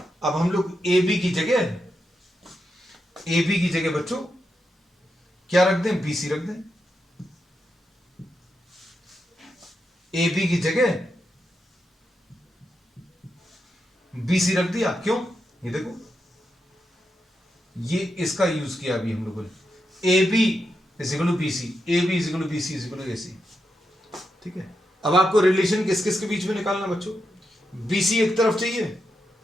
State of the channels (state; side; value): normal; both; correlation 0.85